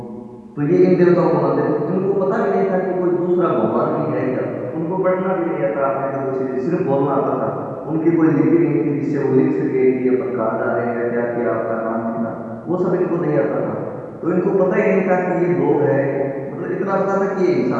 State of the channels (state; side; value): identical; both; correlation 1.00